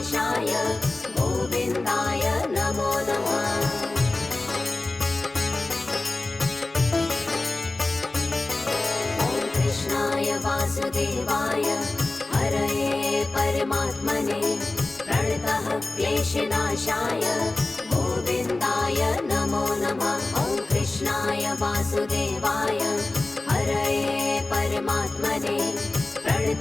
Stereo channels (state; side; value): quieter; right; 3.0 dB